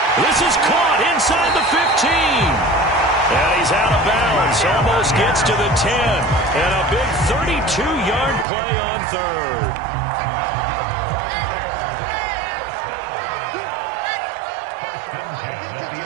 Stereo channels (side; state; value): left; drops out; at 8.5 s